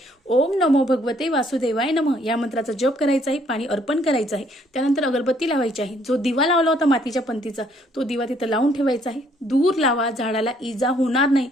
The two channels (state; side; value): normal; both; correlation 0.66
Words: ओम नमो भगवते वासुदेवाय नमः या मंत्राचा जप करायचा आहे, पाणी अर्पण करायचं आहे. त्यानंतर अगरबत्ती लावायची आहे. जो दिवा लावला होता मातीच्या पंतीचा तो दिवा तिथं लावून ठेवायचा आहे. दूर लावा, झाडाला इजा होणार नाही